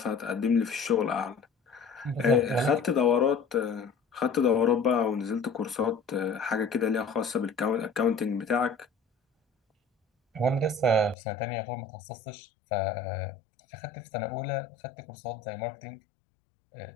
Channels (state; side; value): drops out; right; at 11.2 s